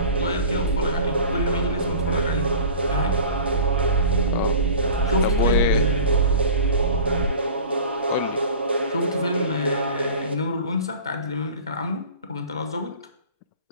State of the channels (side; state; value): both; inverted; correlation -0.38